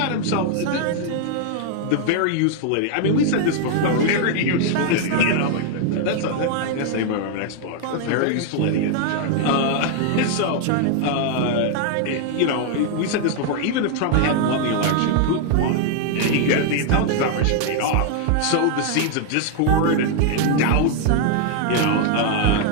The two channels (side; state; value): both; different; correlation 0.00